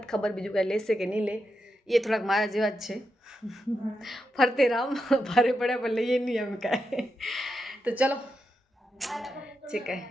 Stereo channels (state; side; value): normal; both; correlation 0.86